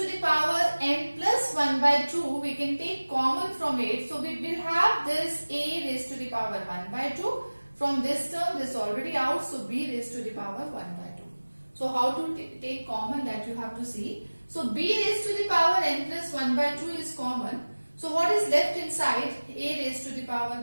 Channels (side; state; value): both; inverted; correlation -1.00